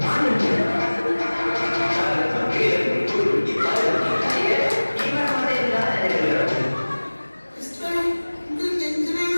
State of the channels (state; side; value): inverted; both; correlation -1.00